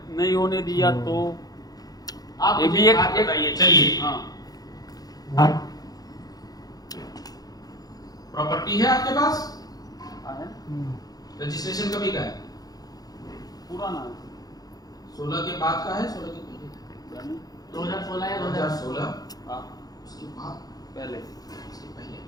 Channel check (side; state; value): right; late; 0.18 ms